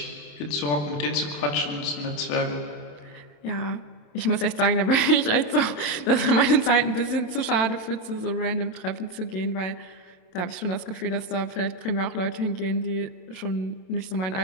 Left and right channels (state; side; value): late; right; 27 ms